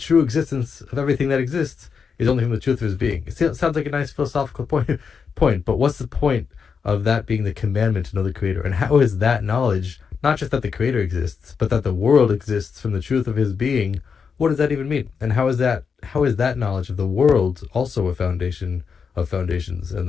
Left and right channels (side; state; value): right; quieter; 6.0 dB